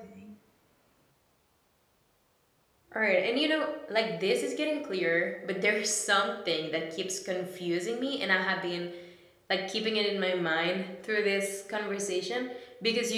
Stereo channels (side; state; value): both; identical; correlation 1.00